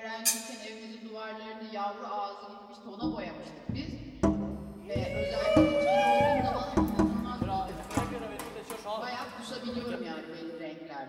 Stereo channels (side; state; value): both; identical; correlation 1.00